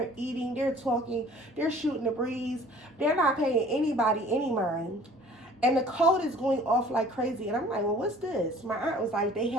eating. They're talking. They're shooting the breeze. They're not paying anybody any mind. And the code is going off like crazy. And I'm like, well, what's this? My aunt was like, they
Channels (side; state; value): both; normal; correlation 0.50